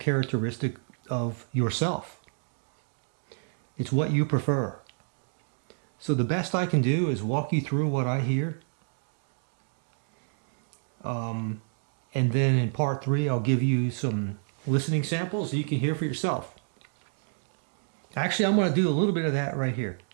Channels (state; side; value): silent; left; digital silence